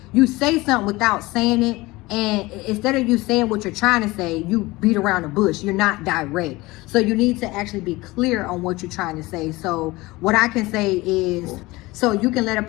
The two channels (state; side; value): quieter; right; 21.0 dB